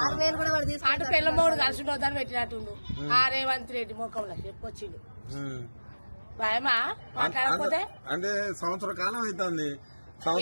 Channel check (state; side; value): inverted; both; correlation -1.00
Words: అటు పిల్ల మొగడు కలిసి పోతాను పెట్టినట్టుండు. ఆ రేవంత్ రెడ్డి ముఖంలో చెప్పొచ్చిండు. భయమా మాట్లాడకపోతే అంటే సంవత్సర కాలం అవుతుంది.